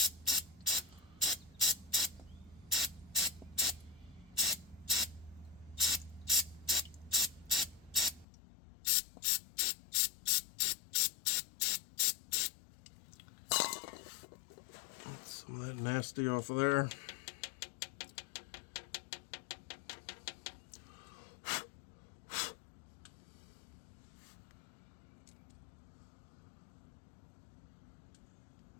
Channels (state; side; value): drops out; right; at 8.2 s